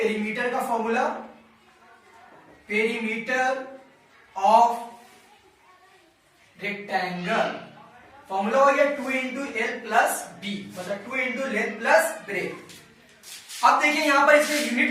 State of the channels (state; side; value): identical; both; correlation 1.00